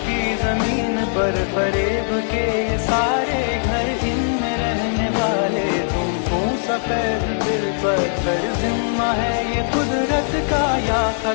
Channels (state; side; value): silent; right; 61 dB below the other